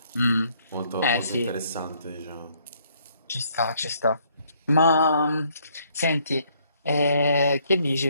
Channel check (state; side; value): inverted; both; correlation -0.66